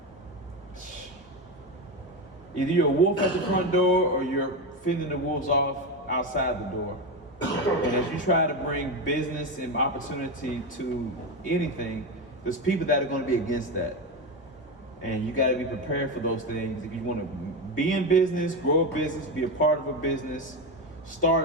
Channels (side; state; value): both; normal; correlation 0.15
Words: either you're a wolf at the front door or you're fending the wolves off outside the door. And as you try to bring business and opportunity to anything, there's people that are going to be against that. And you got to be prepared for those things. If you want to be in business, grow a business, be a part of a business,